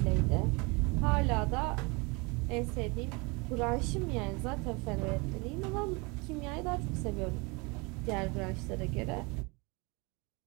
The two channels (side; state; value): left; quieter; 28.2 dB